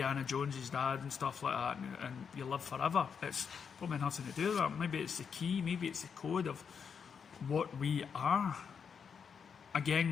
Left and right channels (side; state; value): right; quieter; 6.6 dB